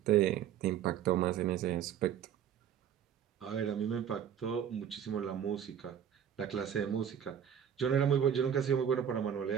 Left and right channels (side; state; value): left; quieter; 9.1 dB